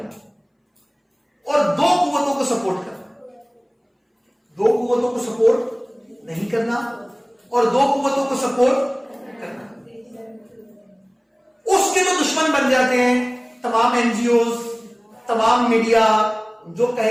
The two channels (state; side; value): identical; both; correlation 1.00